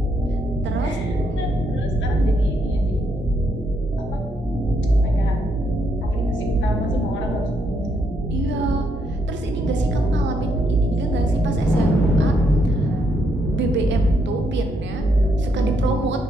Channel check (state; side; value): normal; both; correlation 0.75